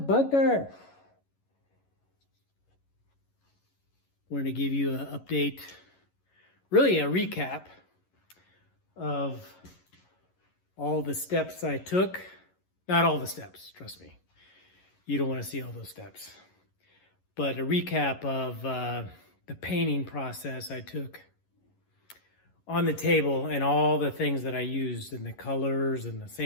Wanted to give you an update, really a recap of all the steps I took. Not all the steps, trust me. You don't want to see all those steps. But a recap of the painting process I took on the table and all the things that I used and the colors and the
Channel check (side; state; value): right; late; 11 ms